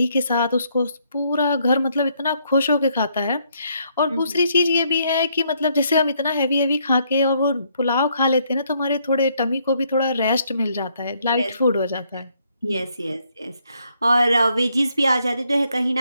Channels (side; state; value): both; inverted; correlation -0.71